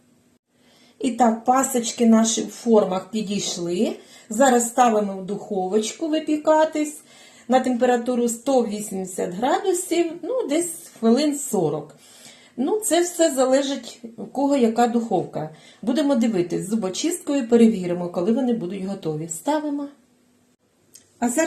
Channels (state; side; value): identical; both; correlation 1.00